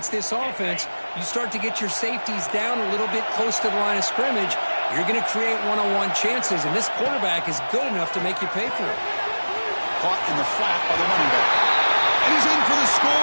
this offense. You start to get your safeties down a little bit close to the line of scrimmage, you're going to create one-on-one chances, and this quarterback is good enough to make you pay for it. Caught in the flat by the running back. And he's in for the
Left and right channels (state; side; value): inverted; both; correlation -1.00